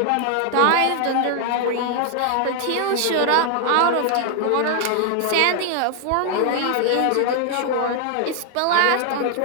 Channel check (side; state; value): both; different; correlation 0.00